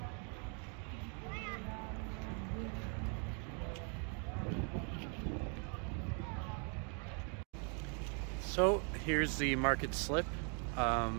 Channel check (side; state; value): left; quieter; 39.0 dB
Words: So here's the Market Slip.